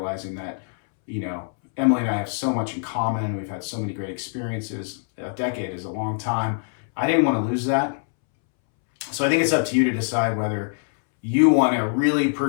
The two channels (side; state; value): right; silent; 63 dB below the other